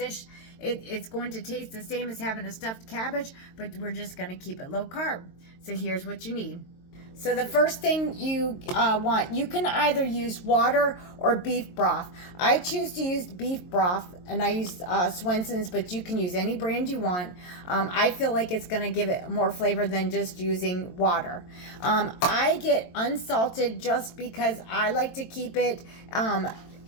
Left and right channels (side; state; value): right; late; 22 ms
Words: It's going to taste the same as having a stuffed cabbage, but we're just going to keep it low carb. So here's what you need. So the first thing you want, you can either use water or beef broth. I choose to use beef broth, and I use Swenson's, but you can use any brand you want. I feel like it's going to give it more flavor than just using water. I get unsalted just because I like to keep it